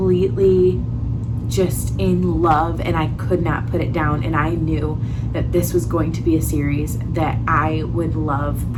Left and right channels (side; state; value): both; identical; correlation 1.00